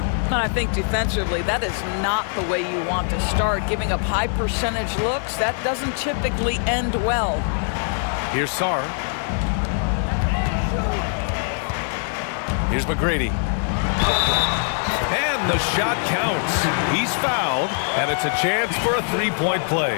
And I think defensively, that is not the way you want to start. Giving up high percentage looks, that doesn't typically end well. Here's Sarr. Here's McGrady. And the shot counts. He's fouled, and it's a chance for a three-point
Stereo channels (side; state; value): right; silent; 57 dB below the other